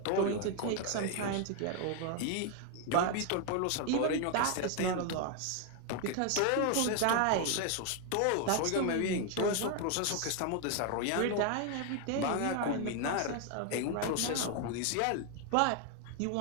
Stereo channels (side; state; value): both; different; correlation 0.01